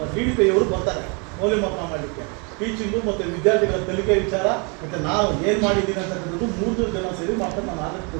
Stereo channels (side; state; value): left; quieter; 33.3 dB